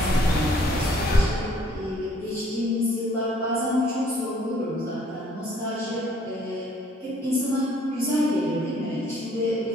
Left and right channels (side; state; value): both; normal; correlation 0.61